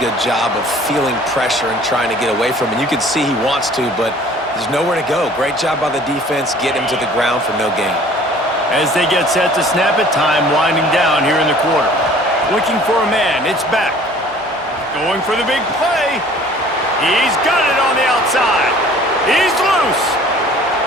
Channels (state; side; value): normal; both; correlation 0.51